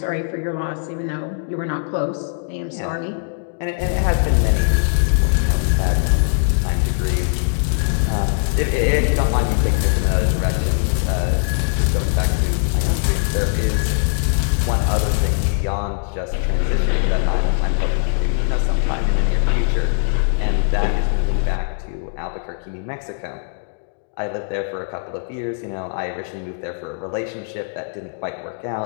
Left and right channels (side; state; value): right; silent; digital silence